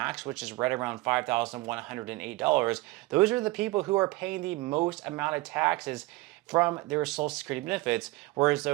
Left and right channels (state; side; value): quieter; left; 21.1 dB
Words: which is right around $5,108. Those are the people who are paying the most amount of taxes from their Social Security benefits, whereas